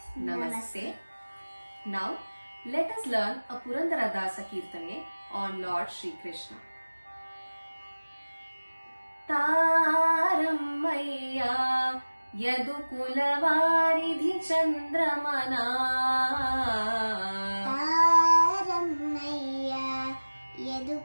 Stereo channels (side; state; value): both; inverted; correlation -1.00